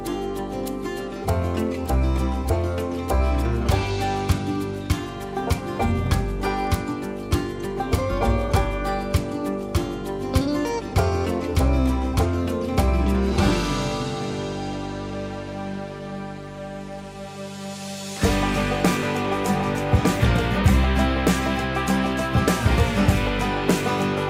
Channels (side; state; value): both; identical; correlation 1.00